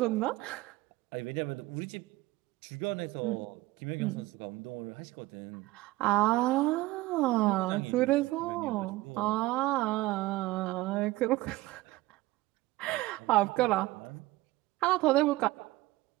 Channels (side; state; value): left; quieter; 18.7 dB